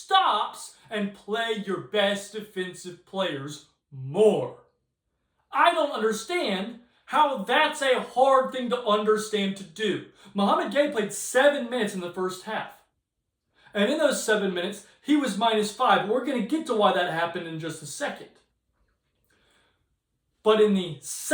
and play your best defensive players more. I don't understand how that's a hard thing to understand to do. Mohamed Gay played 7 minutes in the first half. And in those 7 minutes, he was -5. We're going to get to why that happened in just a second. But in the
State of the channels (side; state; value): both; identical; correlation 1.00